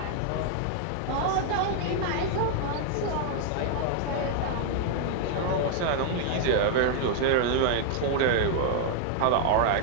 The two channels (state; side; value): different; both; correlation 0.00